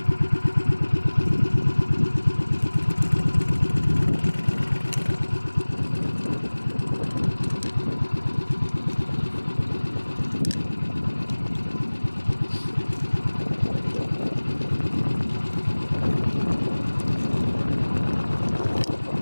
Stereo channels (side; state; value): both; inverted; correlation -1.00